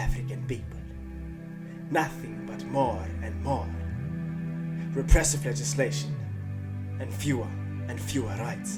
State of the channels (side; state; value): both; identical; correlation 1.00